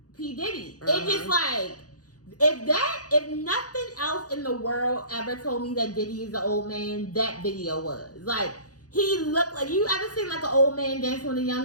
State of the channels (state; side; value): late; right; 0.68 ms